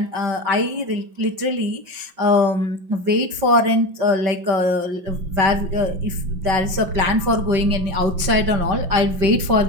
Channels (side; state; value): left; late; 5.6 ms